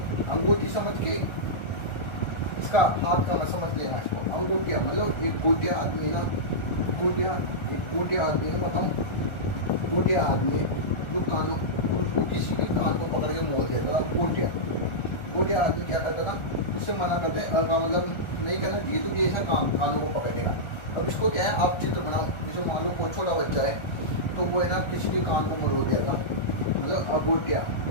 अंगूठी समझ के इसका हाथ का मत समझ लेना इसको। अंगूठिया मतलब एक गोटिया आदमी ना, गोटिया आदमी ना, बताऊँ गोटिया आदमी जो कानों, उनको किसी भी कान को पकड़ के मोड़ देता था, गोटिया आदमी क्या करता था? उससे मना करते मतलब नहीं करना चाहिए, तो ये ऐसा काम कानों को पकड़ेगा। अब इसको क्या है? आप चित्र बनाओ, जैसे मान लो कोई छोटा बच्चा है, तो वो है ना किसी के कान को मरोड़ देगा, मतलब अगोटिया।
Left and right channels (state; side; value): late; right; 1.4 ms